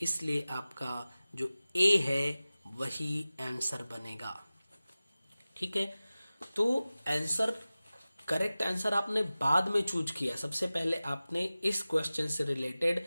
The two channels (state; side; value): inverted; both; correlation -0.97